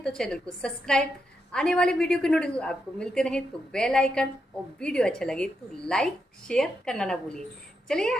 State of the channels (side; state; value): both; normal; correlation 0.83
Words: तो चैनल को सब्सक्राइब, आने वाले वीडियो के नोटिफिकेशन आपको मिलते रहे तो बेल आइकन, और वीडियो अच्छा लगे तो लाइक शेयर करना ना भूलिए। चलिए